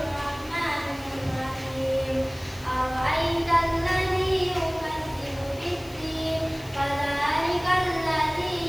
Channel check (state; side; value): noise; left; hiss, 21 dB below the sound